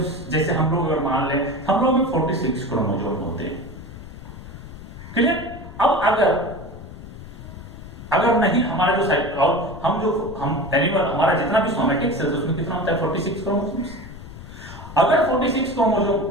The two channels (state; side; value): noise; left; rumble, 14 dB below the sound